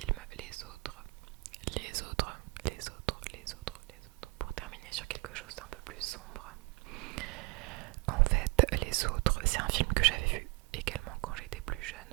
Les Autres, pour terminer sur quelque chose d'un peu plus sombre. En fait, Les Autres, c'est un film que j'avais vu également quand j'étais plus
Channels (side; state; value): left; quieter; 25.5 dB